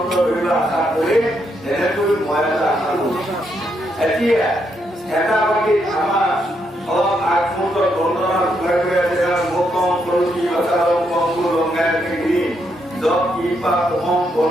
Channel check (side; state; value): both; normal; correlation 0.78